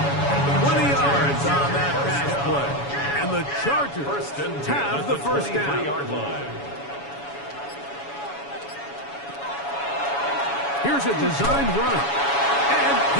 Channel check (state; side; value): late; right; 7.1 ms